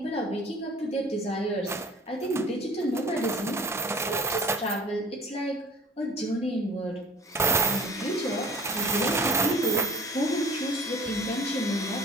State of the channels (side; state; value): both; normal; correlation 0.46